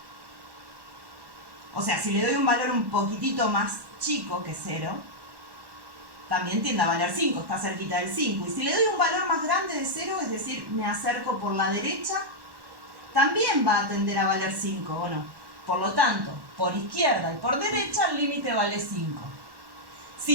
O sea, si le doy un valor un poquitito más chico que 0, también tiende a valer 5, está cerquita del 5. Y si le doy un valor más grande de 0, es decir, me acerco por la derecha, también va a tender a valer 5, ¿o no? Por lo tanto, por izquierda y por derecha el límite vale 5.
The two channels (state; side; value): late; left; 1.1 ms